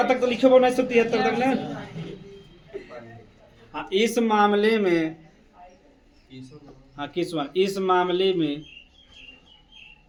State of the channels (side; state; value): both; identical; correlation 1.00